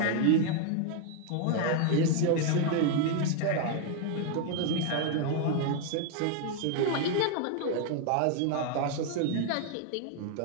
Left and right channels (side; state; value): both; different; correlation 0.00